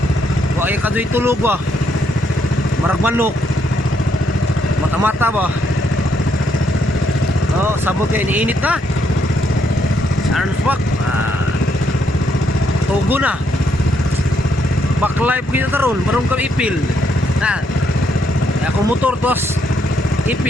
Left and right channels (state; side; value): normal; both; correlation 0.74